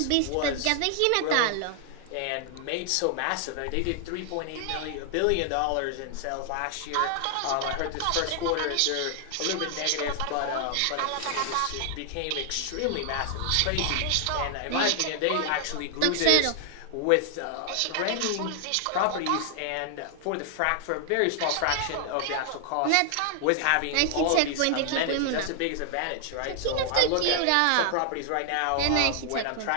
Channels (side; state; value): both; different; correlation 0.00